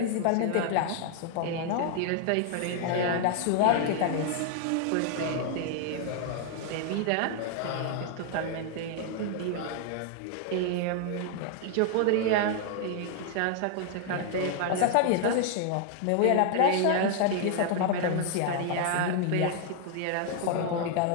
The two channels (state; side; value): different; both; correlation 0.00